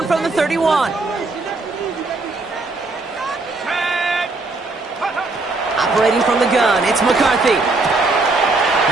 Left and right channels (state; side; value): quieter; left; 3.4 dB